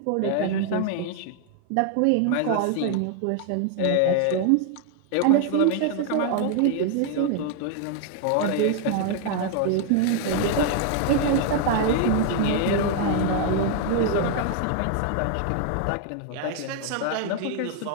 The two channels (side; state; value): both; different; correlation 0.00